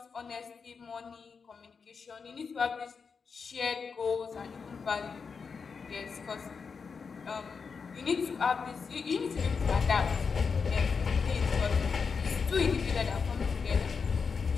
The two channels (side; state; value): right; quieter; 5.5 dB